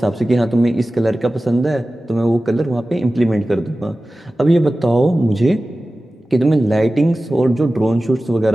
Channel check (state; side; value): normal; both; correlation 0.96